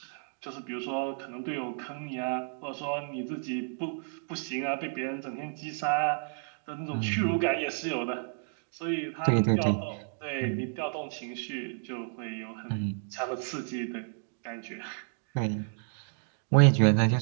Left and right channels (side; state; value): left; silent; digital silence